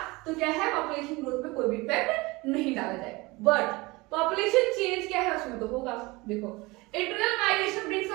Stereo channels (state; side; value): quieter; left; 23.2 dB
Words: तो क्या है पॉपुलेशन ग्रोथ पे कोई भी इफेक्ट नहीं डाला जाएगा। बट पॉपुलेशन चेंज क्या है उसमें तो होगा। देखो internal migration brings